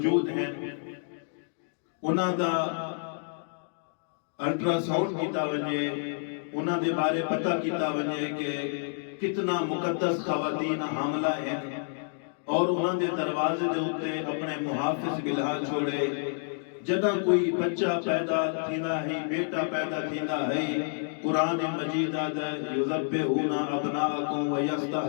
ہیں انہاں دا الٹرا ساؤنڈ کیتا ونجے، انہاں دے بارے پتہ کیتا ونجے کہ کتنا مقدس خواتین حاملہ ہیں، اور انہاں دے دروازے دے اتے اپنے محافظ بلہا چھوڑے. جدہ کوئی بچہ پیدا تھیندا ہے، بیٹا پیدا تھیندا ہے، قرآن مجید آدھا یذبحون ابناءکم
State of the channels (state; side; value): silent; right; digital silence